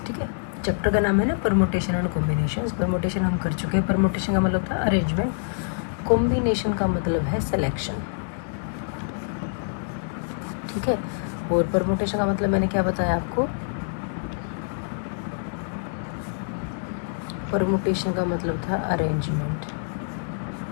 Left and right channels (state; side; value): silent; right; digital silence